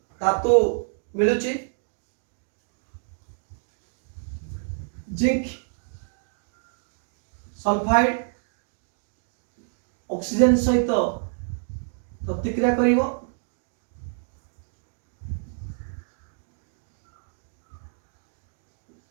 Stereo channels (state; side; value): silent; left; digital silence